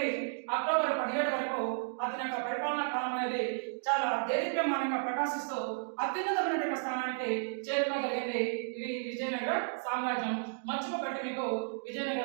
అక్టోబర్ 17 వరకు అతని యొక్క పరిపాలనా కాలం అనేది చాలా దేదీప్యమానంగా ప్రకాశిస్తూ అత్యున్నతమైన స్థానానికి చేరుకోగలిగింది ఇది విజయనగర సామ్రాజ్యం. మర్చిపోబెట్టి మీకు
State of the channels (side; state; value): left; silent; digital silence